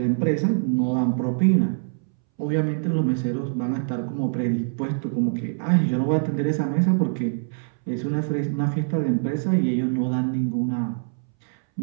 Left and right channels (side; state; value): left; silent; 63 dB below the other